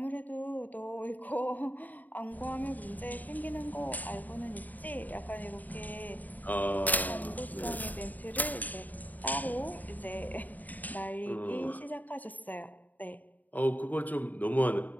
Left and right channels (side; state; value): right; late; 0.081 ms